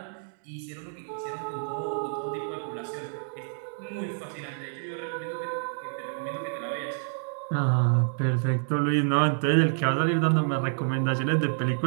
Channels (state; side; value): silent; left; digital silence